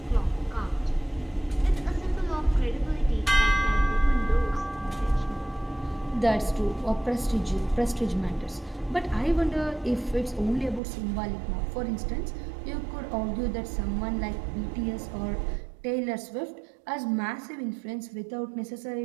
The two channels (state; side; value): drops out; left; at 10.8 s